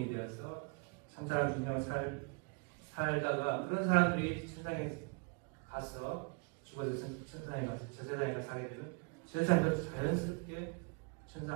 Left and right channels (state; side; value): quieter; left; 33.5 dB